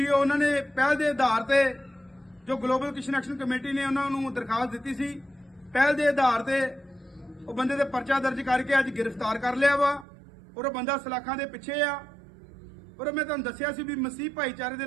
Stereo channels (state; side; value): drops out; left; at 10.1 s